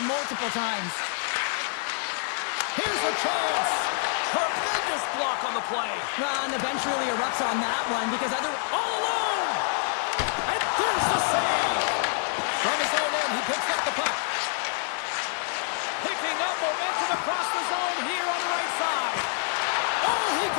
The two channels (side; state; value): right; silent; 55 dB below the other